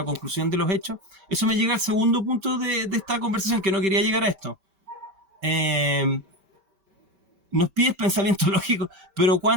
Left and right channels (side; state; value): left; late; 5.2 ms